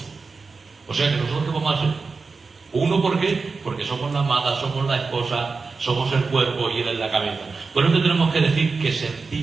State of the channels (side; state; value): left; quieter; 4.4 dB